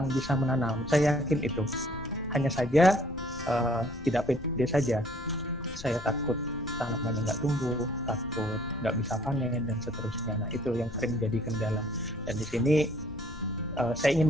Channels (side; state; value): left; noise; rumble, 15 dB below the sound